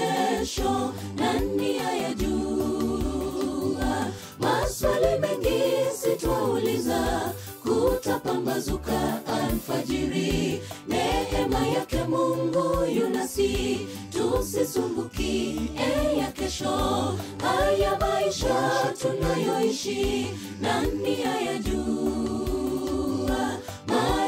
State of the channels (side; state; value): both; identical; correlation 1.00